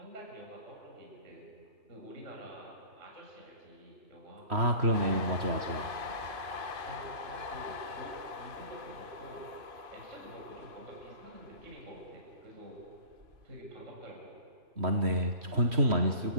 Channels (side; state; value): left; late; 3.1 ms